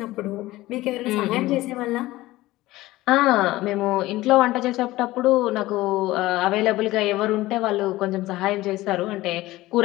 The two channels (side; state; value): right; quieter; 17.7 dB